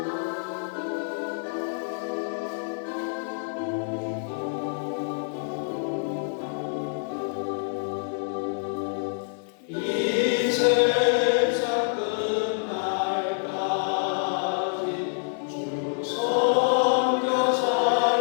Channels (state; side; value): silent; right; 56 dB below the other